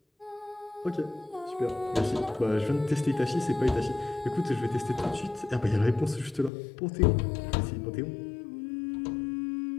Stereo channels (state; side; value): drops out; right; at 6.5 s